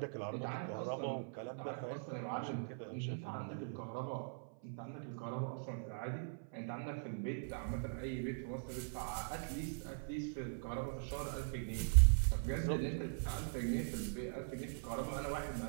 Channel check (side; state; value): left; silent; 50 dB below the other